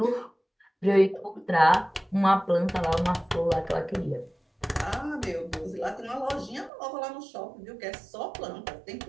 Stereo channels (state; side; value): drops out; left; at 6.7 s